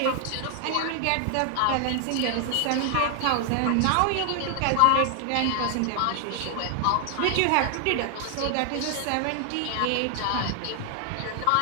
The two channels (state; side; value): different; both; correlation 0.00